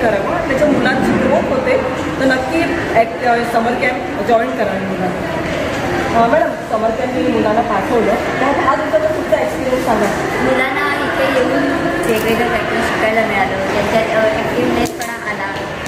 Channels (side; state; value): both; identical; correlation 1.00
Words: करावं. त्याच्या मुलांची ग्रोथ होते. तर नक्की समर कॅम्प जॉईन करावे मुलांना. मॅडम, समर कॅम्प मी मुलांना पाठवलं, तर हा दिवसाचा तुमचा एक्सपिरियन्स सांगा. मुलांना इथे येऊन वेगवेगळं काहीतरी शिकायला मिळालं, त्यांच्यात ॲक्टिव्हनेसपणा आला